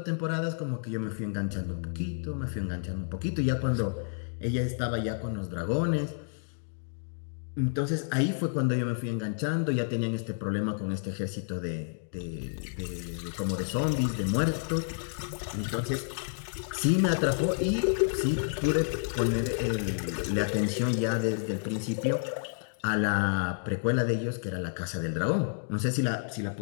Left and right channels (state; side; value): silent; right; digital silence